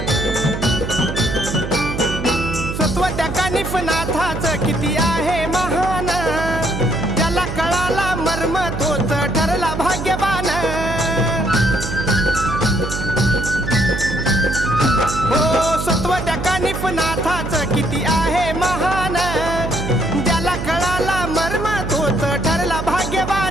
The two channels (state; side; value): noise; right; hum, 5 dB below the sound